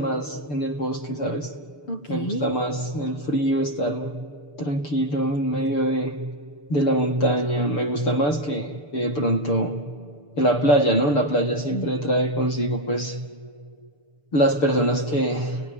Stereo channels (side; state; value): right; late; 6.8 ms